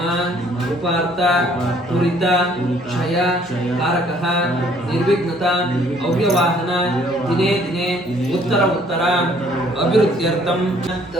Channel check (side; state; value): both; normal; correlation 0.61